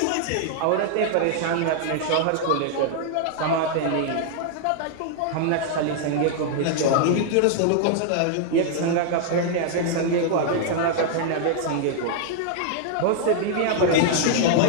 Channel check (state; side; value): different; both; correlation -0.01